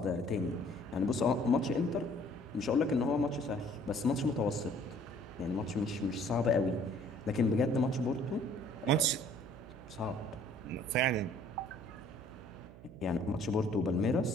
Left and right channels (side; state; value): right; noise; hum, 18 dB below the sound